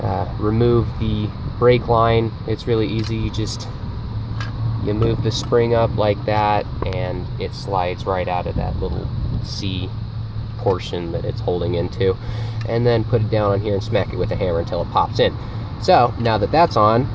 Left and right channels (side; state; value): both; identical; correlation 1.00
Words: remove the brake line. It's really easy. You move the spring up like that and it slides right out of that little C portion that it's holding into, and then put it down on here and smack it with a hammer until it pops in. So now that that's on,